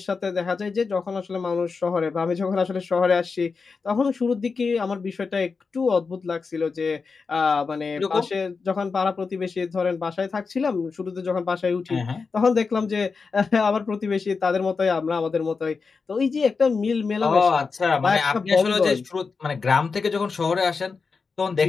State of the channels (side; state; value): right; quieter; 4.8 dB